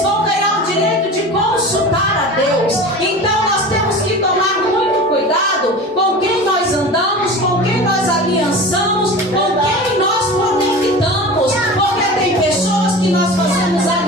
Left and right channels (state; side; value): normal; both; correlation 0.34